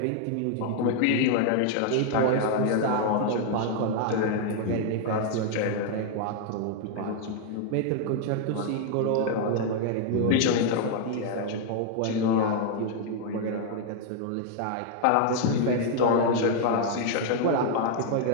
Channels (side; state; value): both; different; correlation 0.00